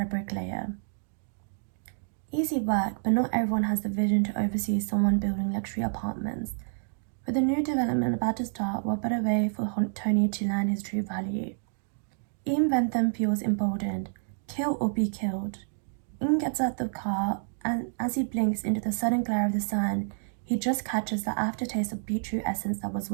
a bricklayer. Easy work, but not everyone has the vision to oversee someone building luxury apartments. With a new development about to start, what better way for Tony to learn his true value? Ian Bentham feels emboldened. Kill or be killed. Ian gets out the car, and as he blinks into the sudden glare of the sun, he just catches the aftertaste of beetroot essence that was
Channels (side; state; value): left; silent; digital silence